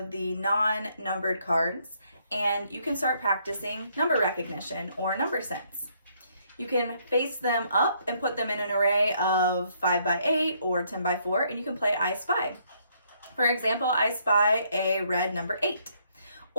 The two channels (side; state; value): both; inverted; correlation -0.70